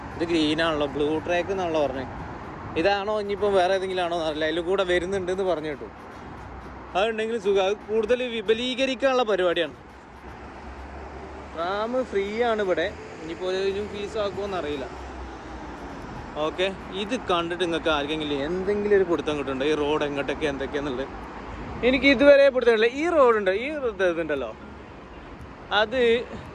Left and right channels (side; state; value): both; identical; correlation 1.00